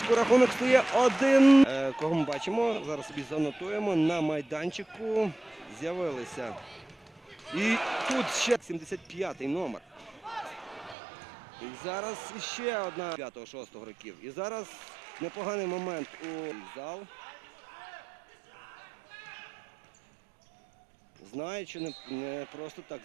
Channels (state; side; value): drops out; left; at 11.0 s